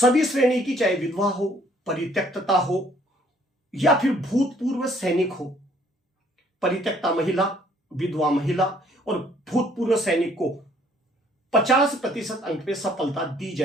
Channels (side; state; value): both; normal; correlation 0.62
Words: श्रेणी की, चाहे विधवा हो, परित्यक्तता हो या फिर भूतपूर्व सैनिक हो, परित्यक्ता महिला, विधवा महिला और भूतपूर्व सैनिक को 50% अंक पे सफलता दी